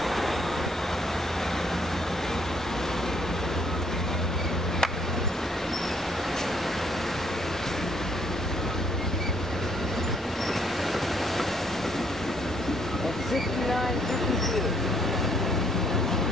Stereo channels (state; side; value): normal; both; correlation 0.68